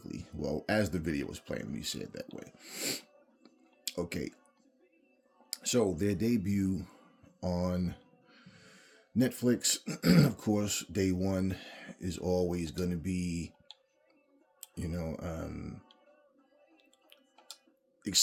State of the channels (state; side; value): identical; both; correlation 1.00